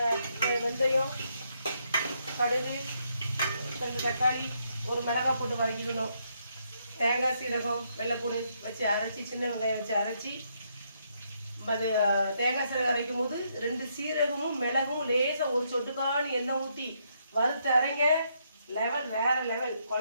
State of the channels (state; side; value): inverted; both; correlation -0.75